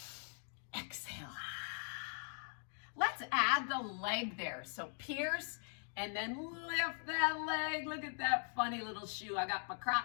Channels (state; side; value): silent; right; 51 dB below the other